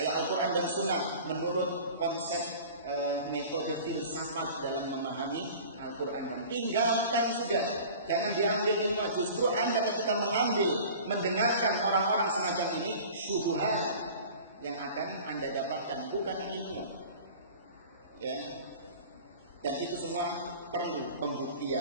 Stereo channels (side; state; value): both; inverted; correlation -0.41